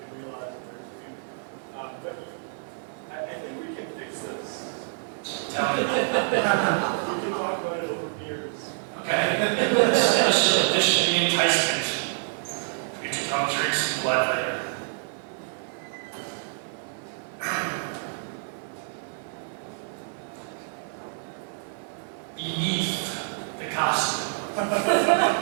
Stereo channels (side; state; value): left; silent; 60 dB below the other